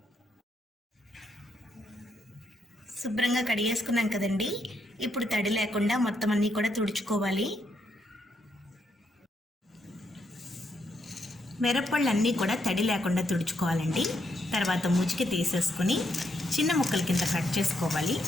శుభ్రంగా కడిగేసుకున్నాం కదండి. ఇప్పుడు తడి లేకుండా మొత్తం అన్నీ కూడా తుడుచుకోవాలి. మిరప్పళ్ళు అన్నీ కూడా తడి లేకుండా తుడుచుకోవాలండి. తర్వాత ముచికి తీసేసుకుని చిన్న ముక్కల కింద కట్ చేసుకోవాలి.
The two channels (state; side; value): normal; both; correlation 0.78